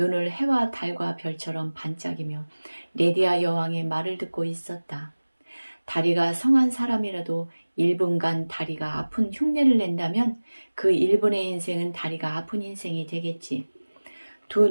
해와 달과 별처럼 반짝이며 레디아 여왕의 말을 듣고 있었다. 다리가 성한 사람이라도 1분간 다리가 아픈 흉내를 낸다면 그 1분의 인생은 다리가 아픈 인생이 되겠지. 두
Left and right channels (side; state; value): both; inverted; correlation -1.00